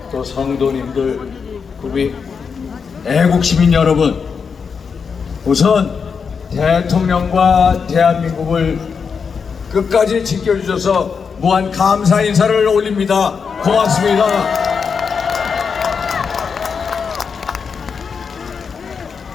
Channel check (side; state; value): right; quieter; 5.9 dB